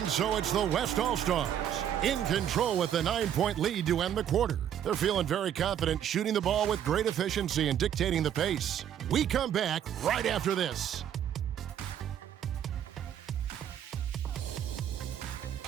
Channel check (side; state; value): left; quieter; 9.9 dB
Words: so it's the West All-Stars in control with a 9-point lead to end the quarter. They're feeling very confident, shooting the ball with great efficiency and dictating the pace. We come back right after this.